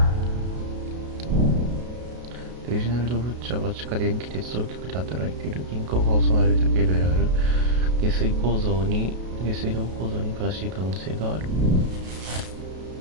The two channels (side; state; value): left; late; 32 ms